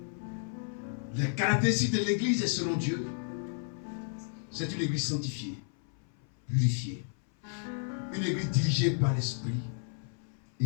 Les caractéristiques de l'église selon Dieu, c'est une église sanctifiée, purifiée, une église dirigée par l'Esprit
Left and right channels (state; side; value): silent; right; 55 dB below the other